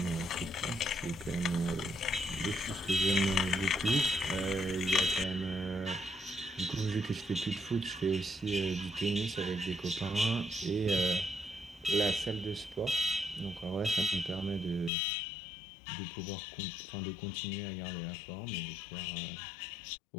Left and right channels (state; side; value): drops out; right; at 14.9 s